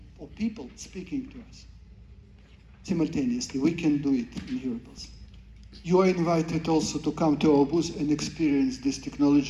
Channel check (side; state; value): both; identical; correlation 1.00